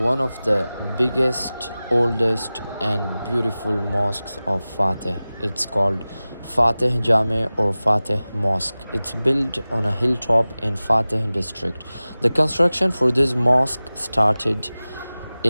of the biggest, oldest and beautiful mosques of Fatih. It's called Fatih Camii or Fatih Mosque. It's built on a hilltop in Fatih district. The construction for this mosque started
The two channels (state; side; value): inverted; both; correlation -0.97